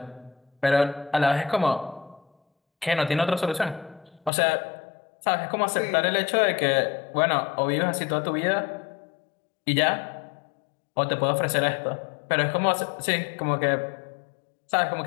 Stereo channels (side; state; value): right; drops out; at 4.3 s